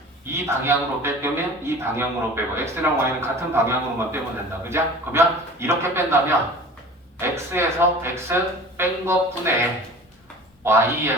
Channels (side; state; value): both; normal; correlation 0.41